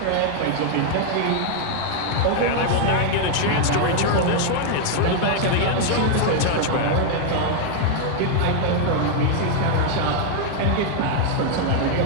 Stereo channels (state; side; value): different; both; correlation 0.00